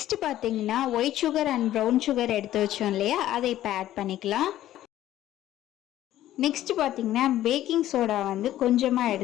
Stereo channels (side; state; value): right; quieter; 13.4 dB